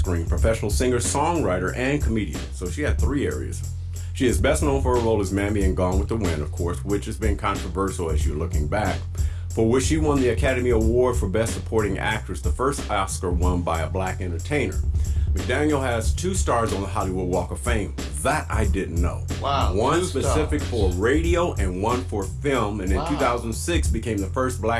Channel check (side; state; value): both; identical; correlation 1.00